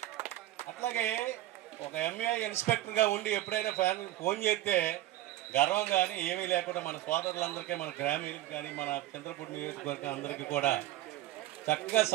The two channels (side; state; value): left; quieter; 15.1 dB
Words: అట్లాగే ఒక ఎంఏ ఇన్స్పెక్టర్గా ఉండి ఎప్పుడైనా ఫోన్ చేస్తే గర్వం కానీ ఏమీ లేకుండా మన సోదరులందరికీ, మన గ్రామీణులకు కానీ, మన చంద్రపూడి నియోజకవర్గం అందరికీ కూడా చక్కగా